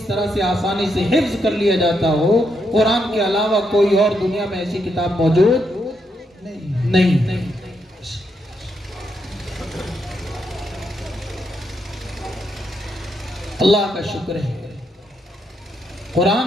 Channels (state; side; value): normal; both; correlation 0.79